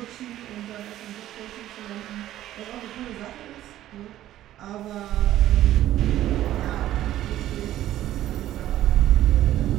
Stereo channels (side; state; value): left; quieter; 13.4 dB